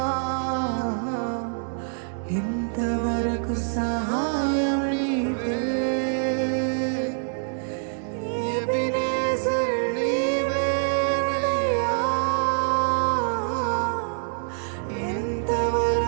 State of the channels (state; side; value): silent; left; digital silence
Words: ఇంతవరకు సహాయం నీవే. ఎబినేజర్ నీవేనయ్యా,